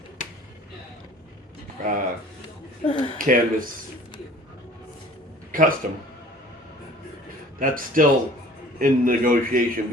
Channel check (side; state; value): both; normal; correlation 0.48